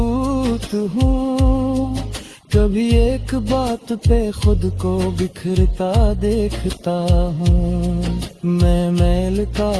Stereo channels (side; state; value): both; identical; correlation 1.00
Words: हूँ, कभी एक बात पे खुद को बिखरता देखता हूँ। मैं मैल का